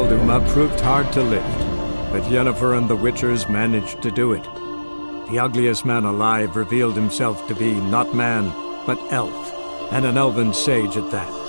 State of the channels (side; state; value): both; inverted; correlation -1.00